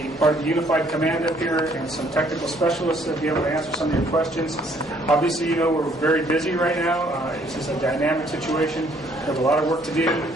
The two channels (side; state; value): left; noise; hum, 26 dB below the sound